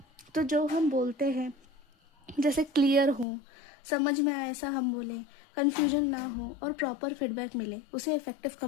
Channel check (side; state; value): right; drops out; at 3.2 s